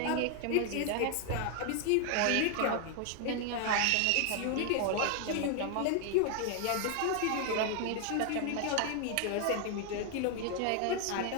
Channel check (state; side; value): different; both; correlation 0.00